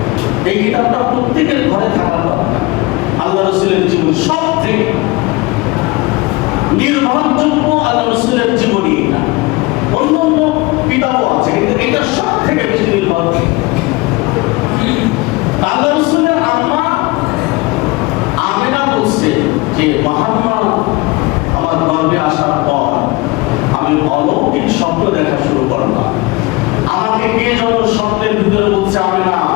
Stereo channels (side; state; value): right; quieter; 23.0 dB